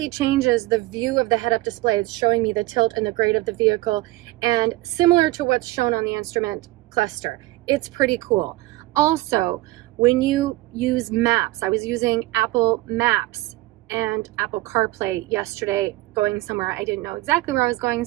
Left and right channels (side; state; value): left; quieter; 19.1 dB